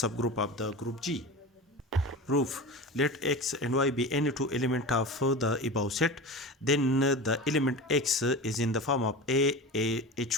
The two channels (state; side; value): normal; both; correlation 0.30